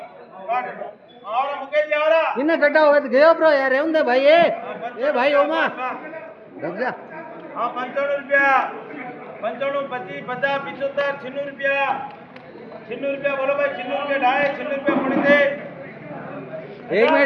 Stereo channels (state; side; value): identical; both; correlation 1.00